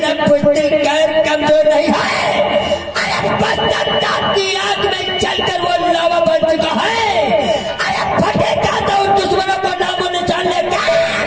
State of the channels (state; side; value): identical; both; correlation 1.00